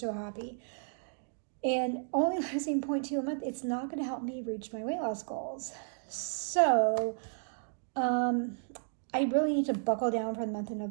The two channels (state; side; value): silent; left; digital silence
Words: happy. And only losing 0.2 a month, it's not going to help me reach my weight loss goals. So I really need to buckle down for the month of